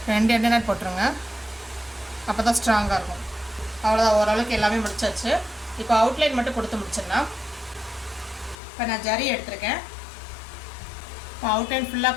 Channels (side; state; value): right; drops out; at 8.6 s